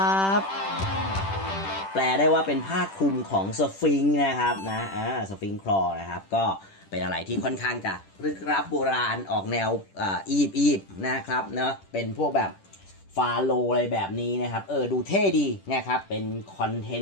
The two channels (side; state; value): right; late; 10 ms